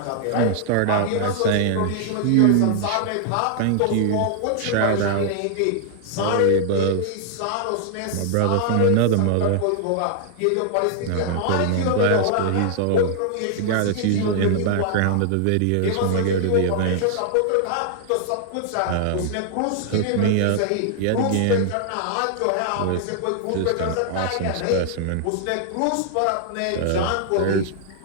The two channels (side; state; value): both; different; correlation 0.00